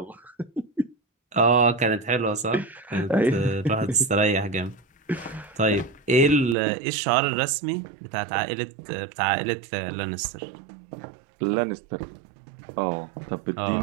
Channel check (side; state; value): left; drops out; at 6.6 s